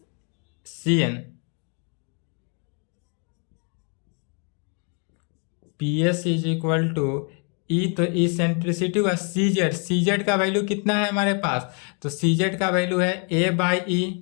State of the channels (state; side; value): quieter; right; 38.7 dB